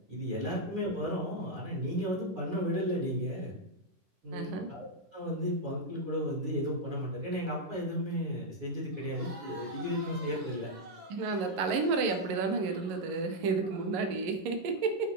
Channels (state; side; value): late; left; 11 ms